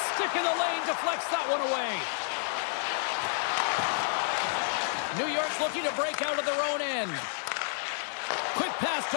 stick in the lane deflects that one away. New York's looking to break out of their own end. Quick pass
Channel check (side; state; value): right; silent; 58 dB below the other